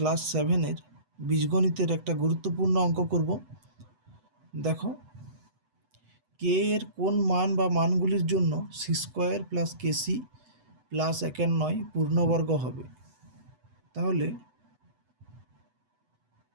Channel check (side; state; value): left; late; 8.0 ms